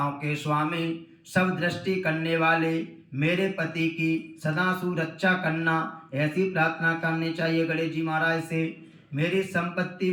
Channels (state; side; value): identical; both; correlation 1.00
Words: के स्वामी सब दृष्टि करने वाले मेरे पति की सदा सुरक्षा करना, ऐसी प्रार्थना करनी चाहिए गणेश जी महाराज से। मेरी संपत्ति